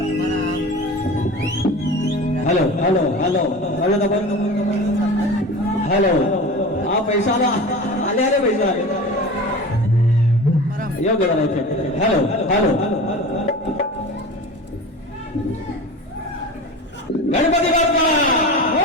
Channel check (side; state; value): both; normal; correlation 0.33